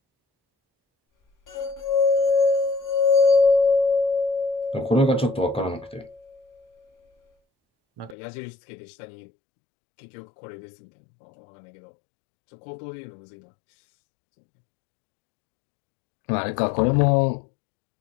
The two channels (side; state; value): right; drops out; at 8.2 s